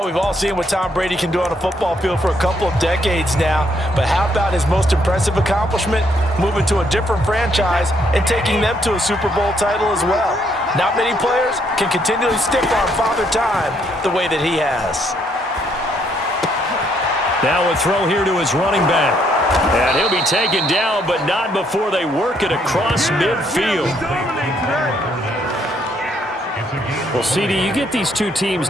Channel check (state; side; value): normal; both; correlation 0.71